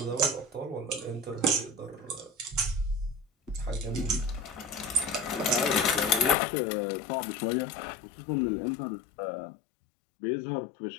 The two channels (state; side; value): drops out; right; at 6.4 s